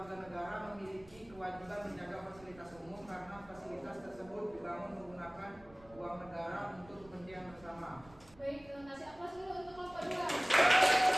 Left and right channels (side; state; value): right; noise; rumble, 23 dB below the sound